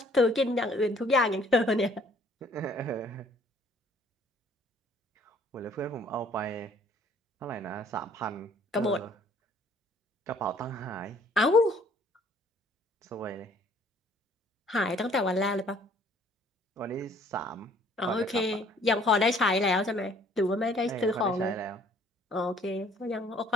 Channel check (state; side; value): normal; both; correlation 0.59